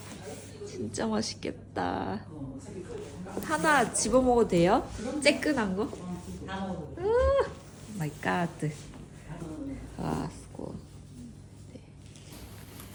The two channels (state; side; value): identical; both; correlation 1.00